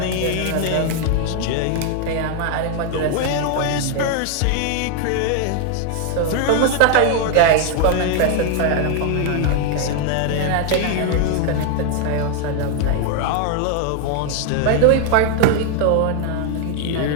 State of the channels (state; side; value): different; both; correlation 0.00